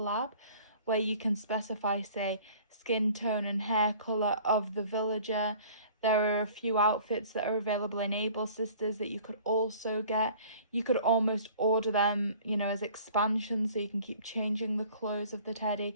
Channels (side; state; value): both; inverted; correlation -0.50